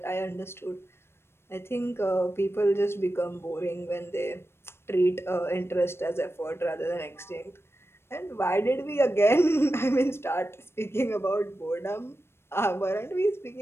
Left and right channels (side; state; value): right; late; 0.12 ms